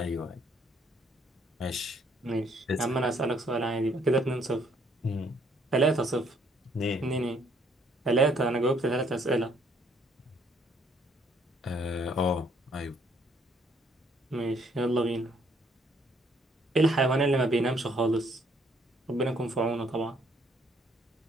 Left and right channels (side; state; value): both; normal; correlation 0.66